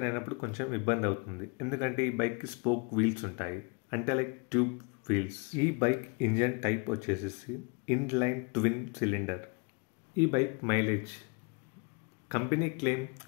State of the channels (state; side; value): quieter; right; 33.0 dB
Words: అయినప్పుడు కొంచెం ఇబ్బంది అవుతుంది, ఎందుకంటే ఈ బైక్కి స్పోక్ వీల్స్ ఉంటాయి, అంటే లైక్ ట్యూబ్ వీల్స్. ఈ బైక్ ఇంజన్ టైప్ వచ్చేసి ఇన్లైన్ ట్విన్ సిలిండర్. ఈ బైక్ మైలేజ్ కంపెనీ క్లెయిమ్